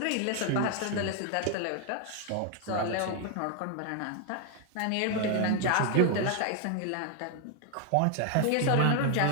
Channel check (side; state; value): both; different; correlation 0.00